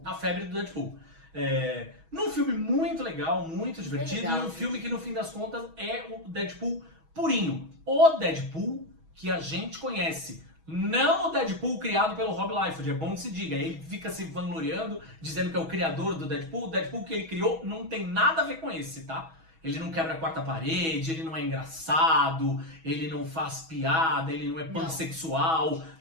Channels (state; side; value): late; left; 6.2 ms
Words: A febre do Deadpool. Num filme muito legal, muito divertido, e um filme que no fim das contas é o Deadpool purinho. O Deadpool que a gente conhece. Não o Deadpool criado pelo Rob Liefeld, é bom que se diga. Ele fica se vangloriando, dizendo que é o criador do Deadpool. O Deadpool que ele criou não tem nada a ver com esse, tá? Ele não quebra a quarta parede, ele não é engraçado, ele não faz piada, ele não é pansexual,